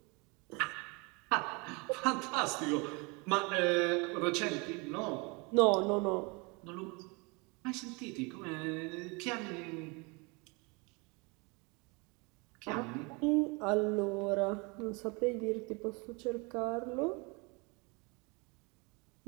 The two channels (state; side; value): quieter; left; 29.1 dB